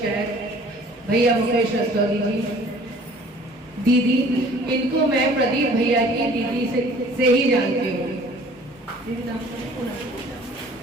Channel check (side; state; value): both; normal; correlation 0.51